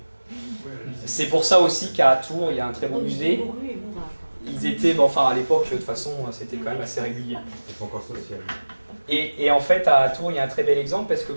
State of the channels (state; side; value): inverted; both; correlation -1.00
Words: C'est pour ça aussi qu'à Tours il y a un très beau musée. Ils étaient, à l'époque de toute façon c'était quand même assez régulier. Et en fait à Tours il y a un très bel exemple parce que